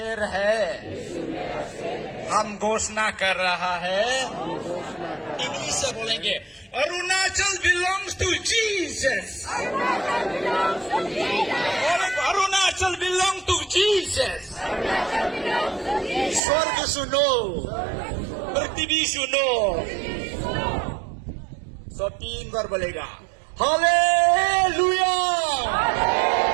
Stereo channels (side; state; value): left; drops out; at 16.4 s